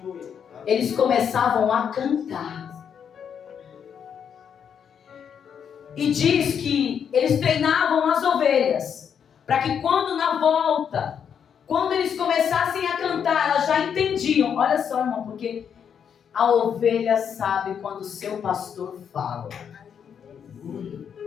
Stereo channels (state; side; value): quieter; right; 7.7 dB